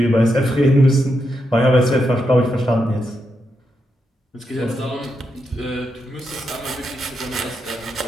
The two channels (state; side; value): normal; both; correlation 0.84